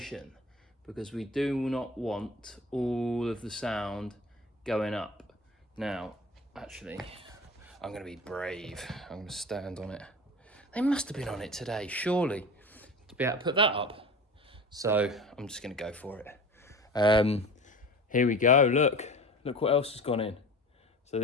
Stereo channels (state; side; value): normal; both; correlation 0.36